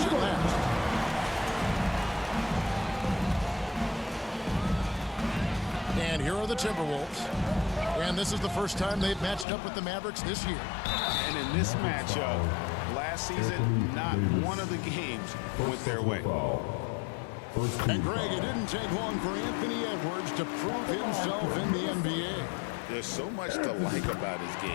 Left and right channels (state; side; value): drops out; right; at 9.5 s